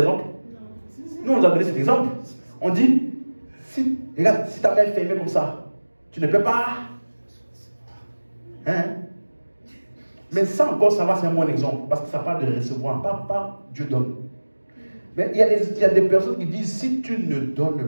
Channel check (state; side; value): inverted; both; correlation -1.00